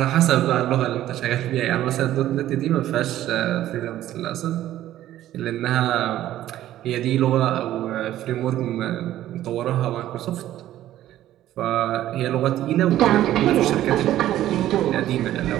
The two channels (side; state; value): left; quieter; 13.3 dB